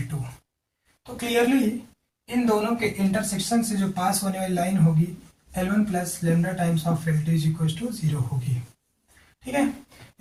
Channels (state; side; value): identical; both; correlation 1.00